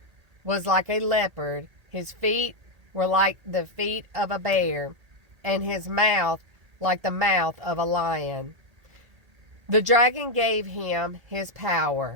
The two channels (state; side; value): late; left; 1.8 ms